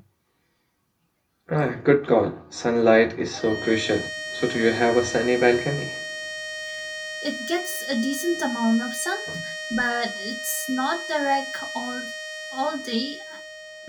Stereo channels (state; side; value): identical; both; correlation 1.00